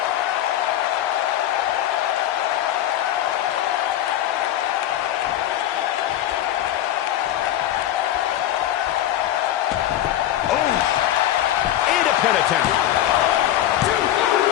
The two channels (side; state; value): right; quieter; 12.5 dB